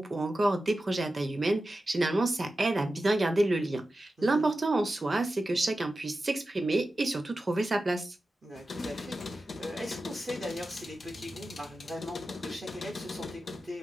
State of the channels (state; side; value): normal; both; correlation 0.93